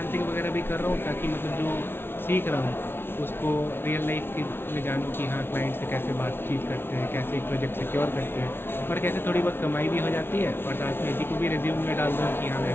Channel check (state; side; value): late; right; 0.11 ms